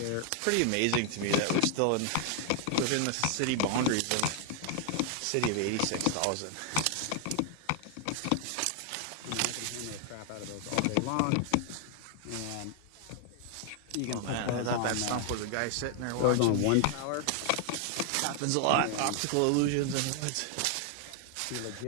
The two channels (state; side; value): different; both; correlation 0.00